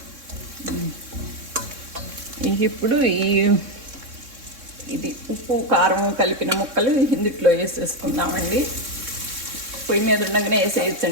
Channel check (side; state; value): left; late; 3.6 ms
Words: ఇప్పుడు ఇది ఉప్పు కారం కలిపిన ముక్కలు ఇందుట్లో వేసేసుకుందామండి. పొయ్యి మీద ఉండగానే